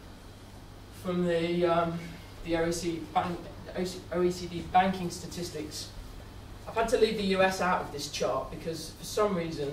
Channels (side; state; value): both; identical; correlation 1.00